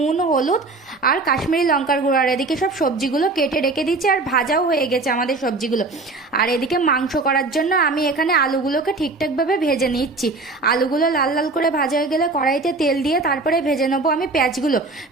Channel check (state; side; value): quieter; left; 3.5 dB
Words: হলুদ আর কাশ্মীরি লঙ্কার গুঁড়ো। আর এদিকে সব সবজিগুলো কেটে রেখে দিচ্ছি, আর ভাজাও হয়ে গেছে আমাদের সবজিগুলো। আর এদিকে মাংস করার জন্য আমি এখানে আলুগুলোকে ঠিকঠাকভাবে ভেজে নিচ্ছি। আলুগুলো লাল লাল করে ভাজা হয়ে গেলে কড়াইতে তেল দিয়ে তারপরে ভেজে নেবো আমি